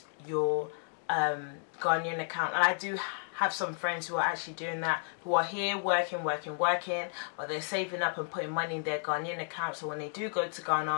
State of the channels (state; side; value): silent; right; 56 dB below the other